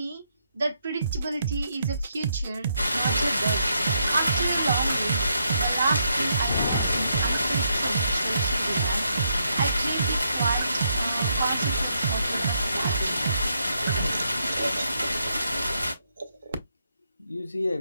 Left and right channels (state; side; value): inverted; both; correlation -0.78